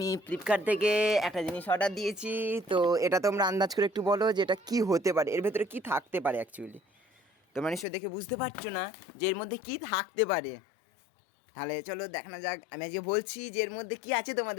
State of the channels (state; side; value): drops out; right; at 7.9 s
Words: ফ্লিপকার্ট থেকে একটা জিনিস অর্ডার দিয়েছি। তো এটা তোমরা আন্দাজ করে একটু বলো যে এটা কী হতে পারে, এর ভেতরে কী থাকতে পারে। অ্যাকচুয়ালি তোমরা নিশ্চয়ই দেখে বুঝতে পারছো না যে এর মধ্যে কী থাকতে পারে। তাহলে চলো দেখানো যাক। আমি আজকে বলছি যে এর মধ্যে কী আছে,